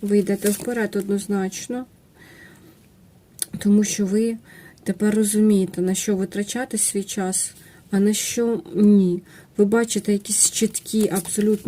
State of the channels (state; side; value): identical; both; correlation 1.00